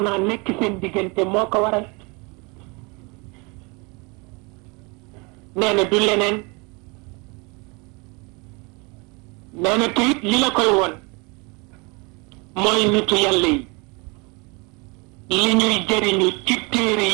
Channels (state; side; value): quieter; left; 29.3 dB